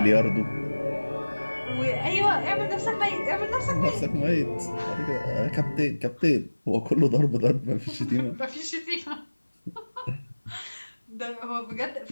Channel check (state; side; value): inverted; both; correlation -1.00